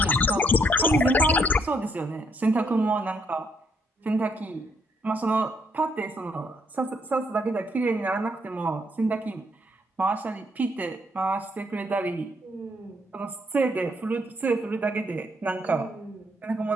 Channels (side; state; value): both; normal; correlation 0.71